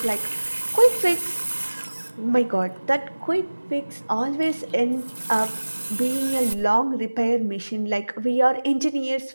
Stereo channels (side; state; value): both; inverted; correlation -1.00